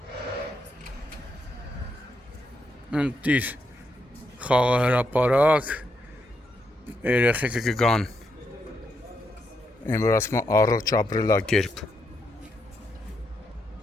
Ընտիր խաղահրապարակ երեխեքը կգան այն որ ասում են առողջ ապրելակերպ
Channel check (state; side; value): normal; both; correlation 0.80